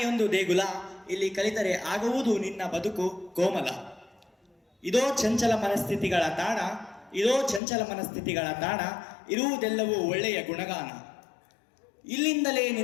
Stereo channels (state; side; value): drops out; right; at 7.6 s